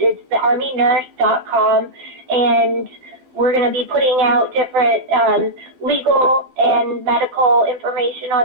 thearmynurse.com, and we're going to be putting out different legal and medical information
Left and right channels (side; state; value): left; late; 12 ms